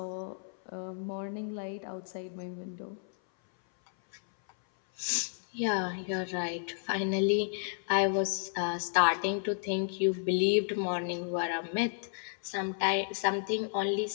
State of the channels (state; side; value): silent; right; 56 dB below the other